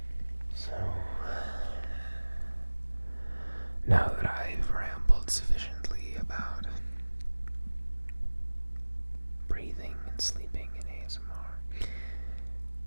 So, now that I've rambled sufficiently about breathing and sleeping in ASMR,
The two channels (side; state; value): both; inverted; correlation -1.00